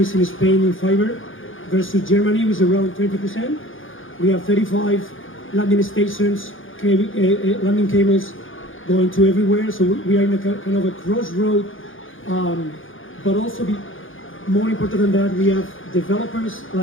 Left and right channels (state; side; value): late; right; 0.58 ms